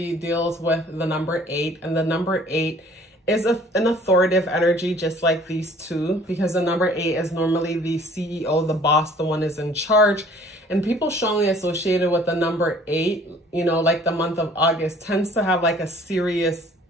deals with the number 8, and the number 8 is an authoritative energy, just like these two, because the number 8 is normally the CEO, the boss, the one is in charge. And people strongly associated with the number 8, you know, like the month of August tends to have like a serious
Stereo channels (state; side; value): normal; both; correlation 0.54